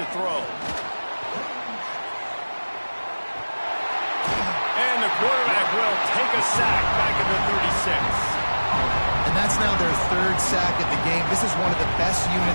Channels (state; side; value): inverted; both; correlation -1.00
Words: throw. And the quarterback will take a sack back at the 36. And that's now their 3rd sack of the game. This is one of the best